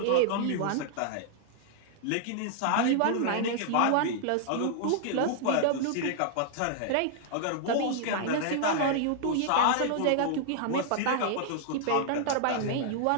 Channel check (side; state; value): both; different; correlation -0.01